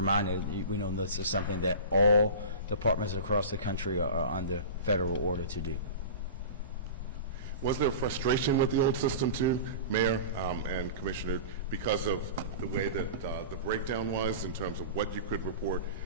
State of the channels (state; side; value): inverted; both; correlation -0.33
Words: we know this is something that all departments across the country are under federal order to do. Was there frustration with the old system too, Mayor and Commissioner, because of the way that the breakdown was in terms of what you could report